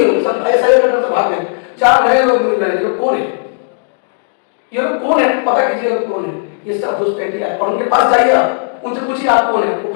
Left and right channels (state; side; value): silent; right; digital silence